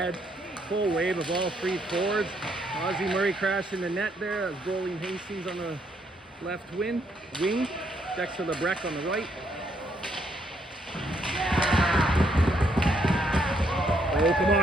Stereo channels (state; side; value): normal; both; correlation 0.73